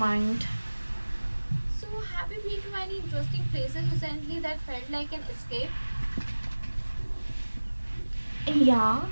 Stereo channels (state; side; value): inverted; both; correlation -1.00